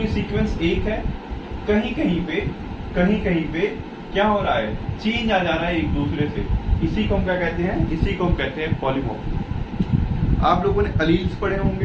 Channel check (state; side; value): identical; both; correlation 1.00